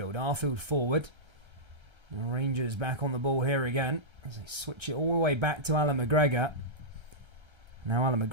Arfield forward. And Rangers back on the ball here again. As they switch it all the way back to Alan McGregor. Now Alan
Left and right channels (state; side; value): late; left; 1.3 ms